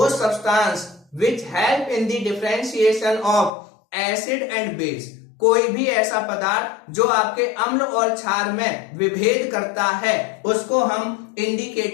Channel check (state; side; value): drops out; right; at 3.5 s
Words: substance which help in the differentiation of acid and base, कोई भी ऐसा पदार्थ जो आपके अम्ल और क्षार में विभेद करता है, उसको हम